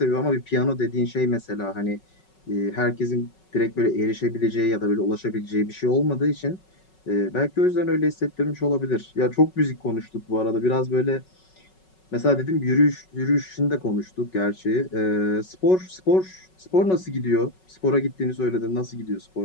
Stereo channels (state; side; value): late; right; 5.4 ms